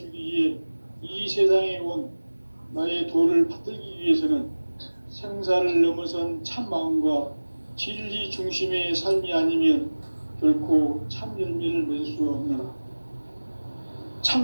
위해 이 세상에 온 나의 도를 받들기 위해서는 생사를 넘어선 참 마음과 진리 중심의 삶이 아니면 결코 참 열매를 맺을 수 없노라.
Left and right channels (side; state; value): both; inverted; correlation -1.00